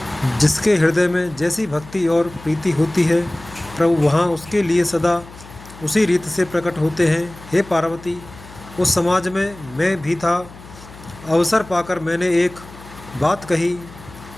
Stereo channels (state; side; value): noise; left; hum, 19 dB below the sound